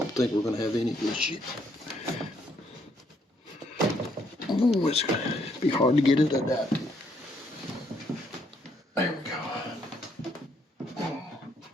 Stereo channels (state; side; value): normal; both; correlation 0.71